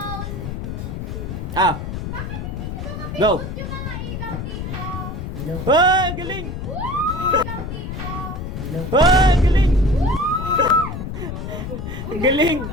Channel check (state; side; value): noise; left; rumble, 6 dB below the sound